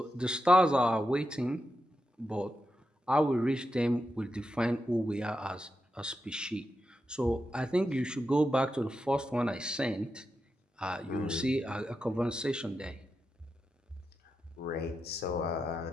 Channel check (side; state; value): both; normal; correlation 0.87